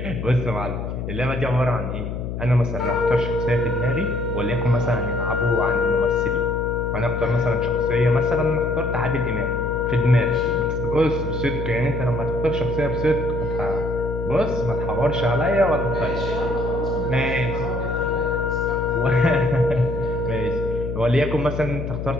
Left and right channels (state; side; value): noise; left; hum, 5 dB below the sound